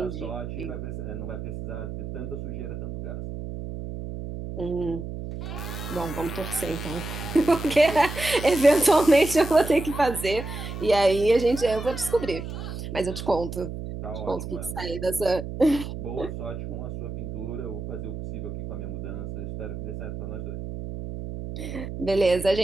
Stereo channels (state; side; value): noise; right; hum, 7 dB below the sound